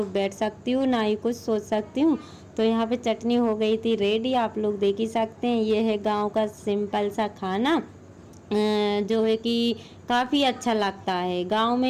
बैठ सकती हूँ, ना ही कुछ सोच सकती हूँ। तो यहाँ पे चटनी हो गई थी रेडी, आप लोग देख ही सकते हैं। ये है गांव का सिंपल सा खाना, जो है कि काफ़ी अच्छा लगता है। गांव में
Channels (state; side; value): identical; both; correlation 1.00